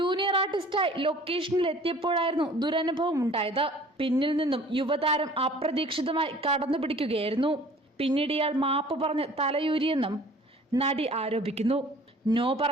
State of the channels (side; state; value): both; normal; correlation 0.50